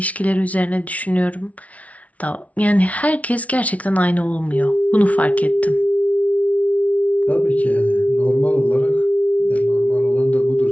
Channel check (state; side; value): late; right; 0.067 ms